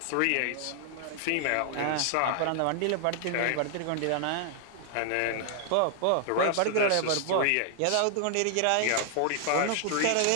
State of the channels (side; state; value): both; different; correlation 0.00